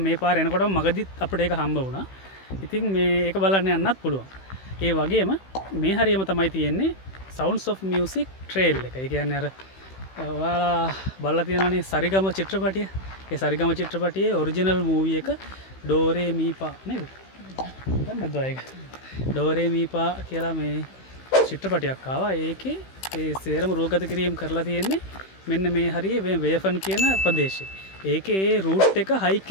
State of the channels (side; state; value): right; late; 16 ms